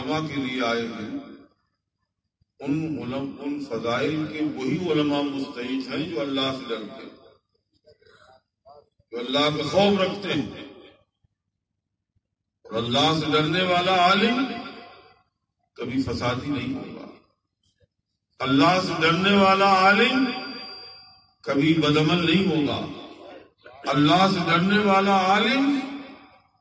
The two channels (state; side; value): identical; both; correlation 1.00